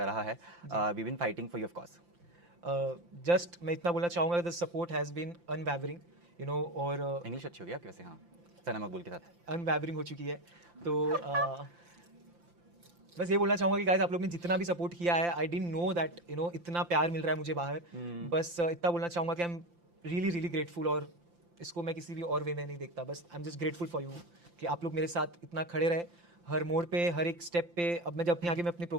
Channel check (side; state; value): left; late; 5.8 ms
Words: रहा है। We been fighting for you of course. Just मैं इतना बोलना चाहूंगा the support has been unwavering you know और इंग्लिश अच्छी होगी आपकी वैसे। हाँ, सना मकबूल के साथ अनवैवरिंग हो चुकी है। तो बस ये बोलना चाहूंगा कि गाइस आप लोग ने जितना भी सपोर्ट किया है I didn't know that you know इतना प्यार मिल रहा है मुझे बाहर। बस इतना बोलना चाहूंगा कि I am really really grateful और इसको मैं किसी भी और वे में नहीं देखता। बस I am just grateful for you कि आप लोग मेरे साथ इतना खड़े रहे हर मोड़ पे हर एक स्टेप पे। अब मैं जब अपने आगे मैं अपनी